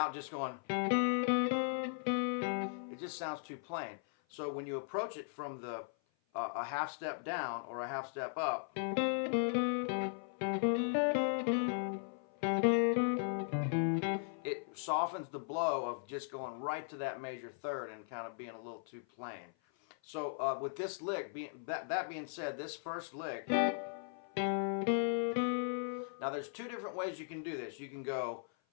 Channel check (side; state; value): right; silent; 52 dB below the other